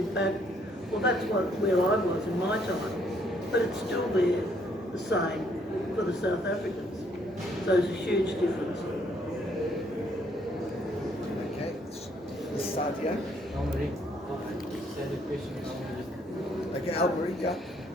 back. Well, that's where I was in my time, but it's still there, the same for the South Africans. So there's a huge difference. Okay, this side here. Okay, Albury, yeah.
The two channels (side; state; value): both; normal; correlation 0.68